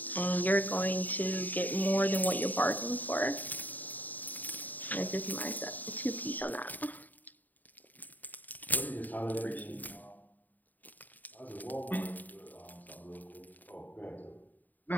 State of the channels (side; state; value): right; late; 0.084 ms